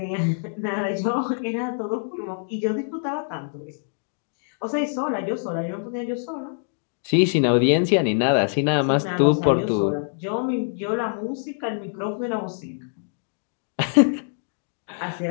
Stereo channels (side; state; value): right; silent; digital silence